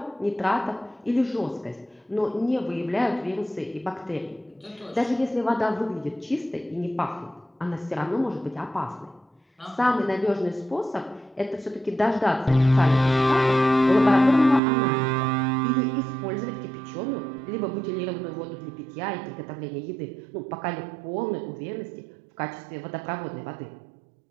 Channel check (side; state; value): left; drops out; at 14.6 s